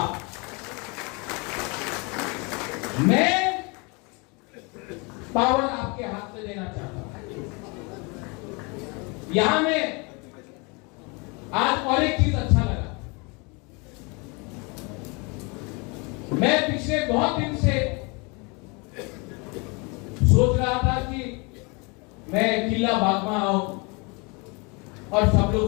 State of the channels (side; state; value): right; quieter; 30.0 dB